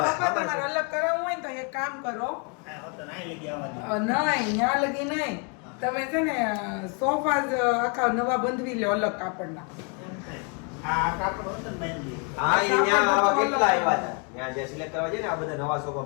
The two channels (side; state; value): right; quieter; 36.2 dB